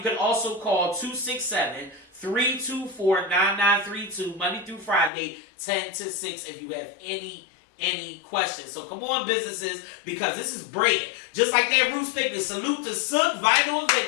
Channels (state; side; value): drops out; right; at 5.1 s